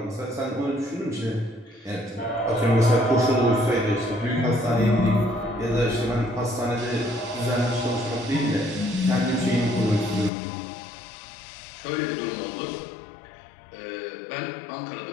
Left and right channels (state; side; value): drops out; right; at 10.3 s